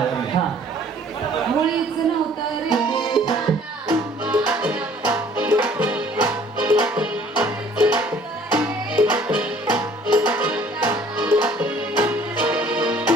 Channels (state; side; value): normal; both; correlation 0.55